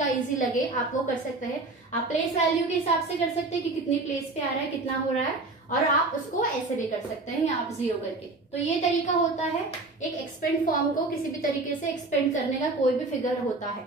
इजी लगे आप वो कर सकते हैं। आप प्लेस वैल्यू के हिसाब से कर सकते हैं कि कितनी प्लेस पे आ रहा है, कितना हो रहा है, और आप उसको ऐसे भी कर सकते हैं या आप 0 करके। तो ये तरीका होता है एक एक्सपेंड फॉर्म को किसी भी तरीके से एक्सपेंड करने का, कोई भी फिगर होता है।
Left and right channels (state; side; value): quieter; left; 3.2 dB